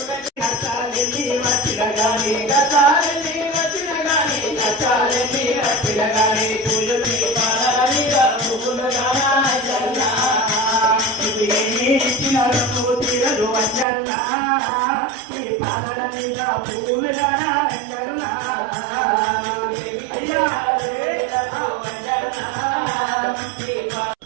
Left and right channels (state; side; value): drops out; left; at 13.9 s